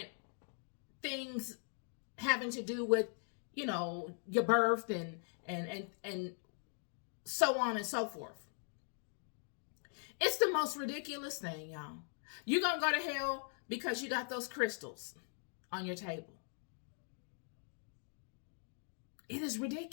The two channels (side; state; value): right; silent; 51 dB below the other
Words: things having to do with, your birth and so on and so forth. It's the most ridiculous thing, y'all. You're gonna go to hell because you got those crystals on your table. It is